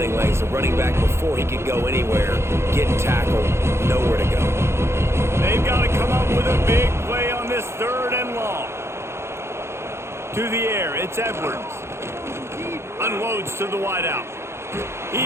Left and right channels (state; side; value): late; left; 0.13 ms